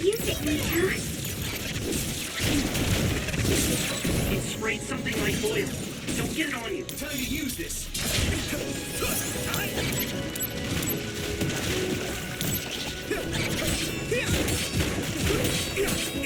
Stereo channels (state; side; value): identical; both; correlation 1.00